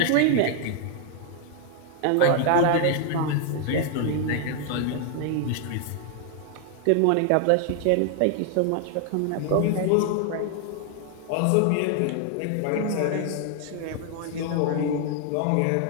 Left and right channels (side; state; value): both; different; correlation 0.00